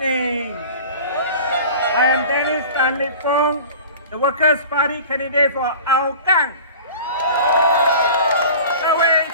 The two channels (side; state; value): both; inverted; correlation -0.40